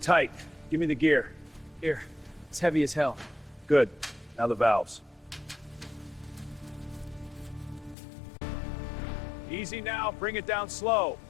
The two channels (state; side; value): drops out; right; at 8.0 s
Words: tight. Give me the gear. Here. It's heavy as hell. Good. Now the valves. Easy now. Bring it down slow.